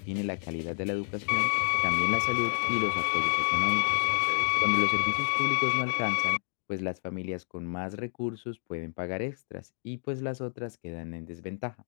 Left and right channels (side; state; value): right; silent; digital silence